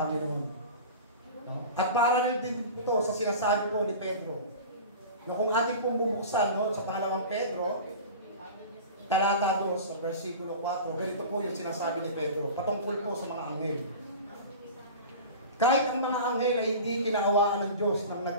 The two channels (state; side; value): inverted; both; correlation -0.35